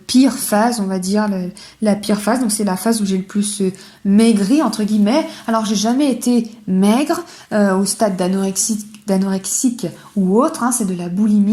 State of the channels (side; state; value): both; identical; correlation 1.00